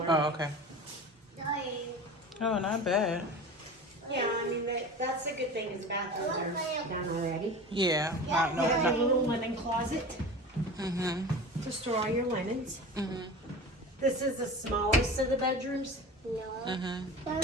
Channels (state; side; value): normal; both; correlation 0.34